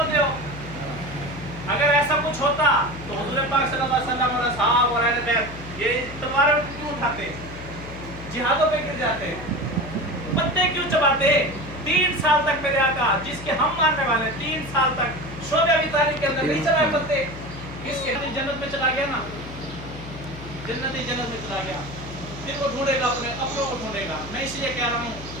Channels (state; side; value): noise; left; hum, 13 dB below the sound